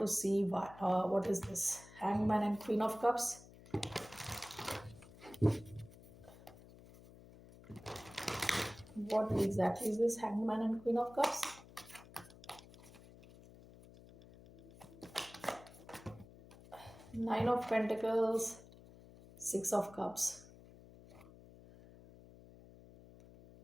see what is this hangman and queen of cups. What exactly is this hangman and queen of cups? Nine of pentacles, six of cups.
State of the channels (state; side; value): noise; left; hum, 20 dB below the sound